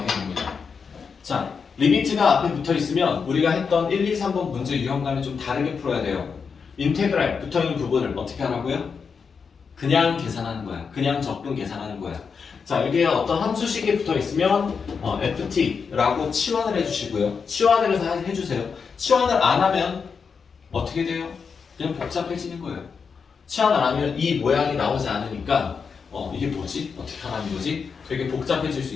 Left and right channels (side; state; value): right; quieter; 5.8 dB